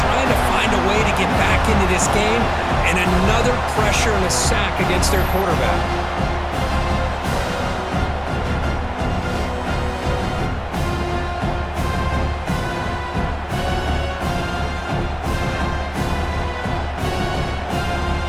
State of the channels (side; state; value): both; identical; correlation 1.00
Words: trying to find a way to get back into this game, and another pressure and a sack against their quarterback.